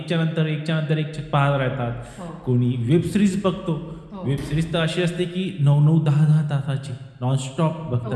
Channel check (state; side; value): identical; both; correlation 1.00